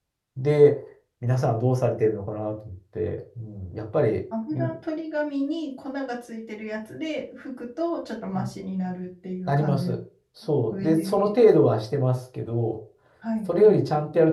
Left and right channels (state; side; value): identical; both; correlation 1.00